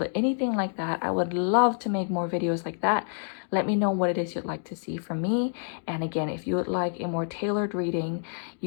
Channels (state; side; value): silent; right; digital silence